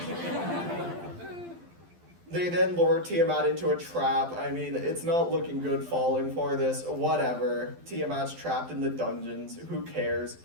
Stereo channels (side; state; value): left; late; 12 ms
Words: They then lure Tiamat into a trap. I mean, it's not looking good falling for this. Whatever. Tiamat's trapped in the dungeons. Who cares?